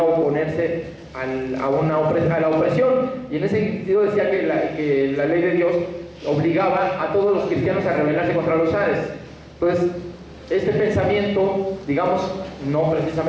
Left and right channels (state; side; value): identical; both; correlation 1.00